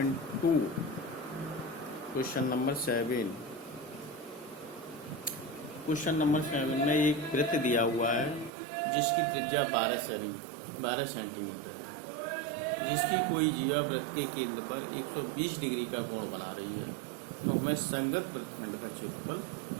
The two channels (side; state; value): left; drops out; at 8.5 s